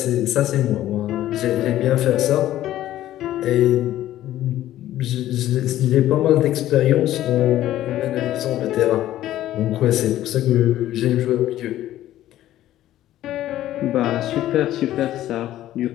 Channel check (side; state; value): right; quieter; 13.5 dB